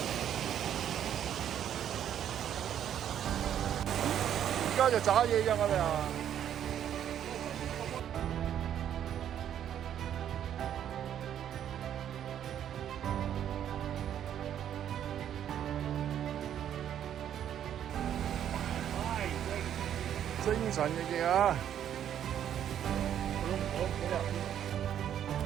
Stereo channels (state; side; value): quieter; left; 10.0 dB